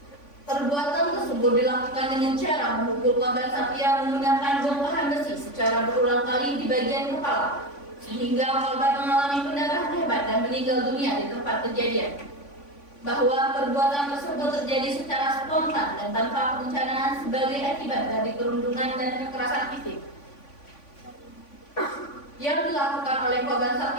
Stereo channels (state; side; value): late; right; 3.5 ms